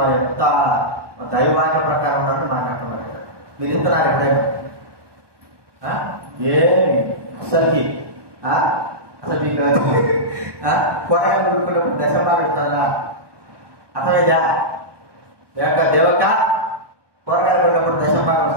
వారి ఎంత దైవాన్ని ప్రకారం మాట్లాడుతున్నారు. మీరు ఇస్తున్నారు ఎప్పుడైనా? అసలు మీకు కూరగాయలు కొనుక్కున్నప్పుడు దశమాలు ఇస్తారా? అసలు దేవక కూరగాయలు కొన్నప్పుడు దశమాలు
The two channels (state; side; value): late; left; 1.2 ms